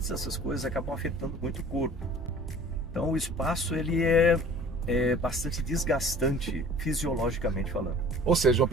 essas coisas acabam afetando muito o corpo. Então o espaço ele é bastante desgastante fisiologicamente falando. Ou seja, uma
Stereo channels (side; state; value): both; normal; correlation 0.46